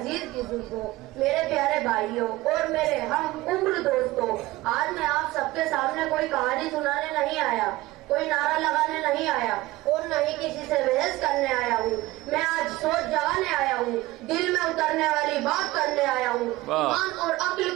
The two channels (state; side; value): quieter; left; 18.6 dB